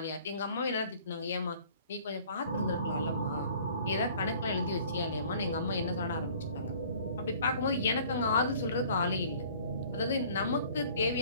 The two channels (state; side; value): inverted; both; correlation -0.52